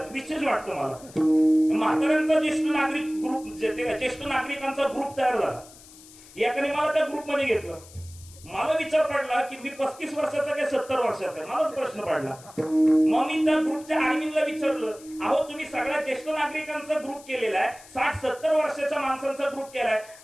विशेष वाटतं मला. म्हाताऱ्यांचा ज्येष्ठ नागरिक ग्रुप ज्येष्ठ नागरिकांचा ग्रुप तयार झाला. एकाने मला त्या ग्रुपमध्ये घेतलं. मला विचार पडला की मी 35 वर्षाचा काय 70 वर्षाचा? मलाच प्रश्न पडला. मग मी त्या ग्रुपच्या ऍडमिनला विचारलं, अहो तुम्ही सगळ्या ज्येष्ठ नागरिकांचा ग्रुप केलेला आहे, 60-70 वर्षाच्या माणसांचा ग्रुप केलाय,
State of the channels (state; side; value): noise; left; hiss, 21 dB below the sound